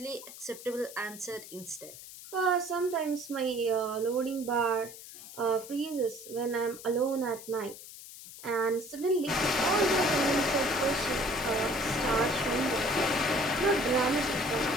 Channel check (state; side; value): noise; left; hiss, 15 dB below the sound